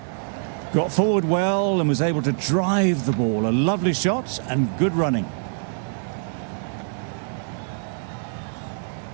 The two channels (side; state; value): left; silent; digital silence